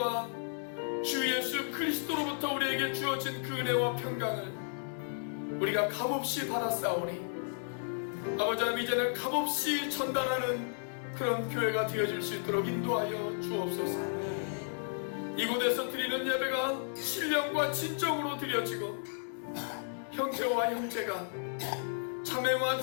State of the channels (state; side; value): silent; right; digital silence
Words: 주 예수 그리스도로부터 우리에게 주어진 그 은혜와 평강을 우리가 값없이 받았사오니 아버지 하나님, 이제는 값없이 전달하는 그런 교회가 되어질 수 있도록 인도하여 주옵소서. 이곳에서 드리는 예배가 신령과 진정으로 드려지고 형제와 형제가, 자매와